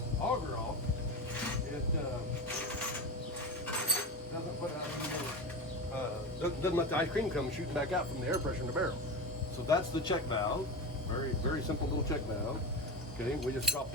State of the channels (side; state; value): both; normal; correlation 0.23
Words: auger off, it doesn't let the ice cream come shooting back out from the air pressure in the barrel. So that's the check valve. Very, very simple little check valve. Okay, we just drop